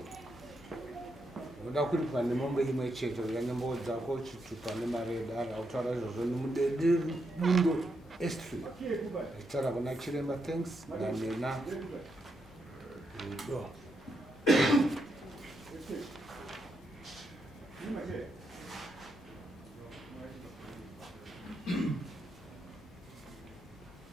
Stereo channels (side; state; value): both; normal; correlation 0.81